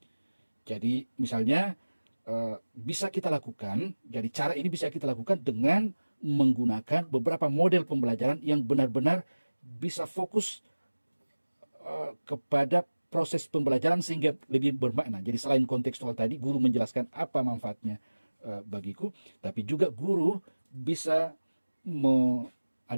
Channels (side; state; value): both; inverted; correlation -1.00